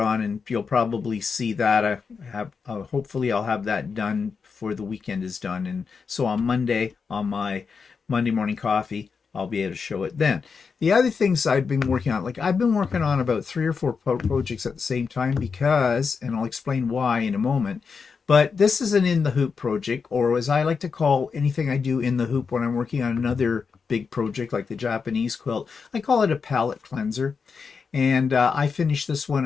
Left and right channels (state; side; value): quieter; right; 5.5 dB